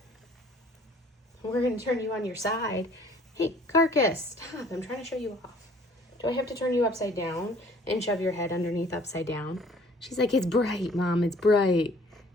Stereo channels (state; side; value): normal; both; correlation 0.55